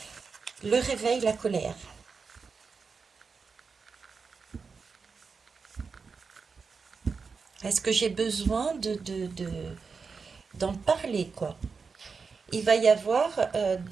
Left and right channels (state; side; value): quieter; left; 5.0 dB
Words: Le réveil, la colère. Est-ce que j'ai besoin d'en parler, quoi? Il va y avoir